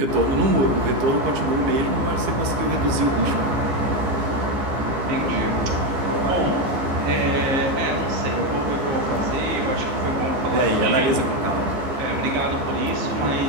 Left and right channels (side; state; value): left; late; 14 ms